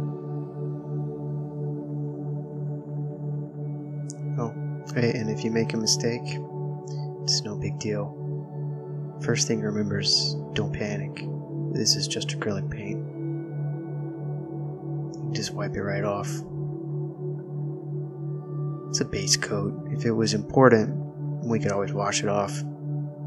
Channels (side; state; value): both; identical; correlation 1.00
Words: Oh, hey, and if you make a mistake, it's no big deal. First thing to remember is don't panic. This is just acrylic paint. Just wipe it right off. It's a base coat. If it was important, we could always wash it off.